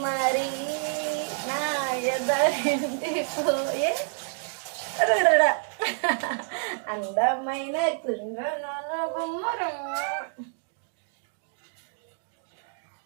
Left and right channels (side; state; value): left; silent; 59 dB below the other